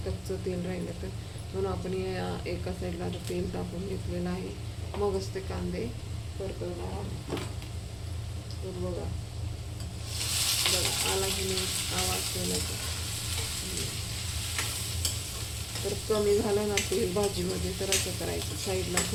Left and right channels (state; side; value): identical; both; correlation 1.00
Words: कच्चं तेल राहिलं तर. म्हणून आपण या एका साईडला तेल टाकून घेतलेलं आहे. मगच ते कांदे परतवणार आहोत. तर बघा बघा आला की नाही आवाज तेलाचा. तर कमी झालं ना तेल भाजीमध्ये तर असं करायचं. साईडला